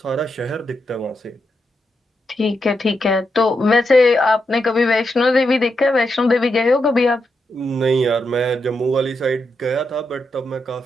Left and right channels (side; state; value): both; normal; correlation 0.84